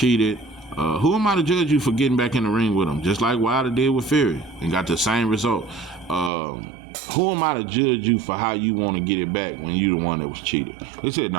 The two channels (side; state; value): left; drops out; at 6.3 s